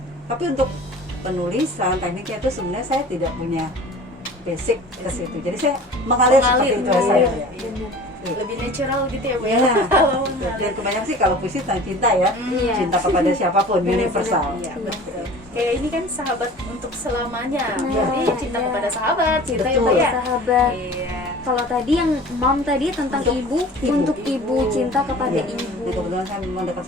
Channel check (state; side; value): normal; both; correlation 0.42